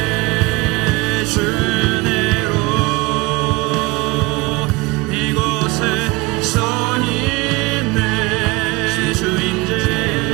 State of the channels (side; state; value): left; quieter; 22.7 dB